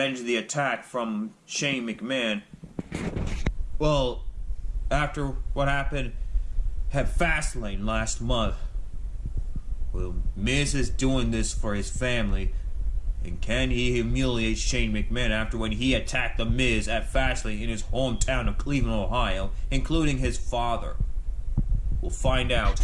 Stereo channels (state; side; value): identical; both; correlation 1.00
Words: the attack from Shane McMahon? Well, after what happened at Fastlane last month, well, Miz is doing this for his family. And can he humiliate Shane McMahon after when he attacked The Miz at Fastlane in his hometown of Cleveland, Ohio, including his father? We'll find out